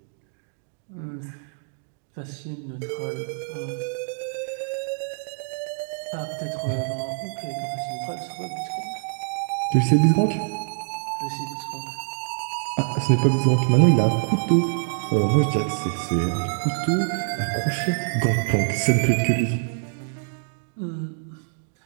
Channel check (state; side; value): silent; left; digital silence